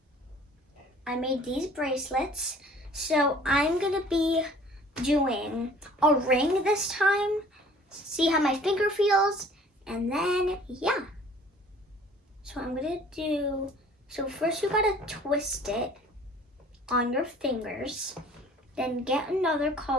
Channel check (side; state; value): both; normal; correlation 0.51